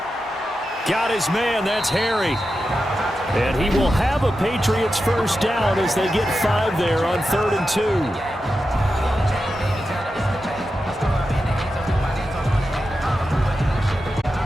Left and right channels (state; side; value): normal; both; correlation 0.90